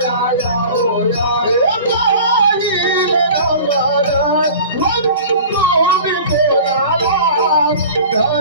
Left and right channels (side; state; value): both; inverted; correlation -0.41